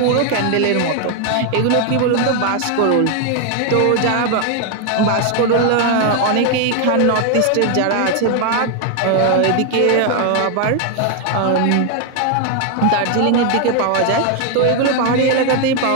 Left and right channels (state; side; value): different; both; correlation 0.01